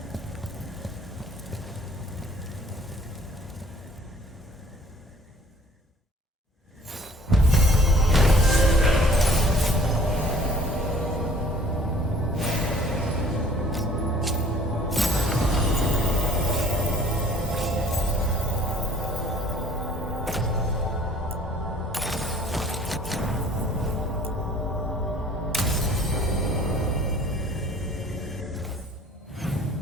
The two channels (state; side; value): normal; both; correlation 0.54